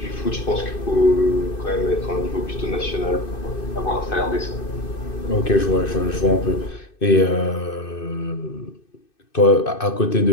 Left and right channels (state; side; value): late; right; 2.6 ms